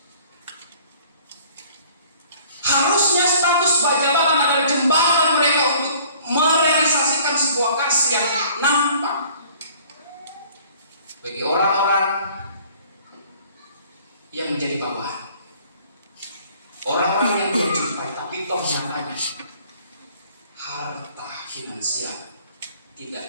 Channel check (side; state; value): both; inverted; correlation -0.53